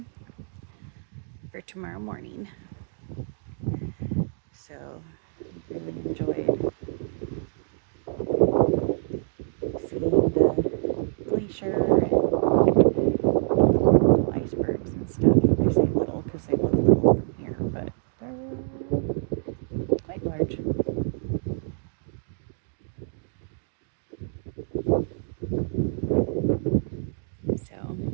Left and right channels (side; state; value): left; silent; digital silence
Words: for tomorrow morning. So, really enjoyed seeing the glacier and little icebergs and stuff. I say little because they look little from here, but they're quite large.